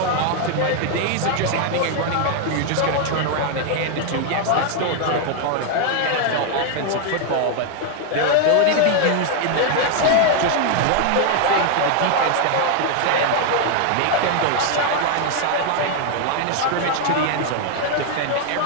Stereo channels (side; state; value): both; different; correlation 0.00